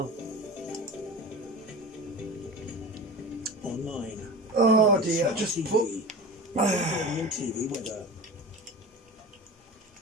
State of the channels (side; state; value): both; normal; correlation 0.32